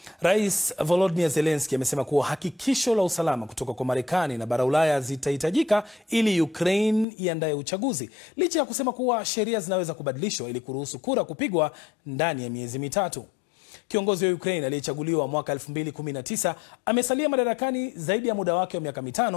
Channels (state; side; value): drops out; right; at 7.1 s